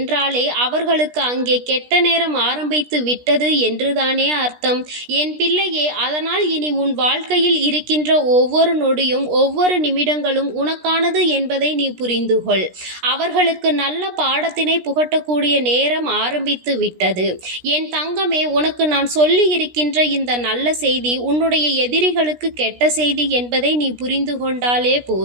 அவர்களுக்கு அங்கே கெட்ட நேரம் ஆரம்பித்து விட்டது என்றுதானே அர்த்தம். என் பிள்ளையே, அதனால் இனி உன் வாழ்க்கையில் இருக்கின்ற ஒவ்வொரு நொடியும் ஒவ்வொரு நிமிடங்களும் உனக்கானது என்பதை நீ புரிந்து கொள். அவர்களுக்கு நல்ல பாடத்தினை புகட்டக்கூடிய நேரம் ஆரம்பித்து விட்டது. என் தங்கமே, உனக்கு நான் சொல்லி இருக்கின்ற இந்த நல்ல செய்தி உன்னுடைய எதிரிகளுக்கு கெட்ட செய்தி என்பதை நீ புரிந்து கொண்டாலே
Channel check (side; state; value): left; late; 16 ms